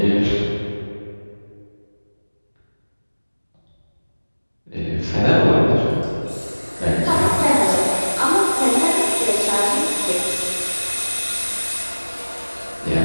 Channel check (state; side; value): inverted; both; correlation -1.00